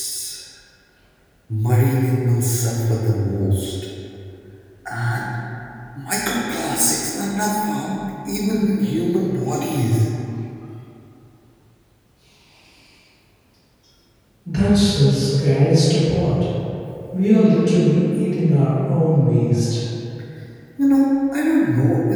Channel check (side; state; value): both; identical; correlation 1.00